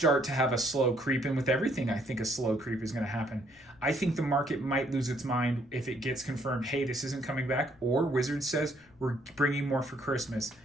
to have a slow creep, and with everything, I think a slow creep is going to happen. I think the market might lose its mind if it gets confirmed, hey, this isn't coming back, or Wizards says we're bringing more for Christmas.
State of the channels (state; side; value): noise; left; rumble, 30 dB below the sound